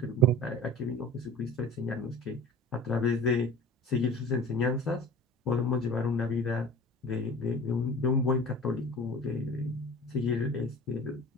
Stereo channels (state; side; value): normal; both; correlation 0.39